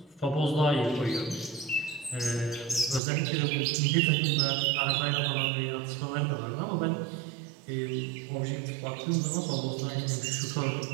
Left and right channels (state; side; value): drops out; left; at 3.0 s